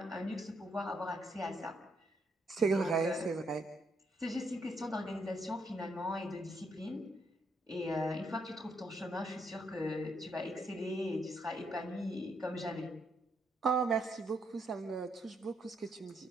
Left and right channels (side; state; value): both; normal; correlation 0.75